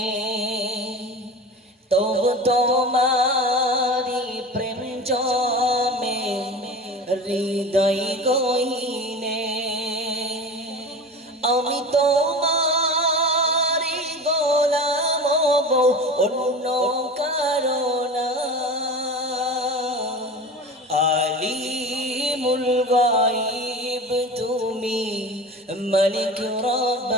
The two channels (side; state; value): both; normal; correlation 0.33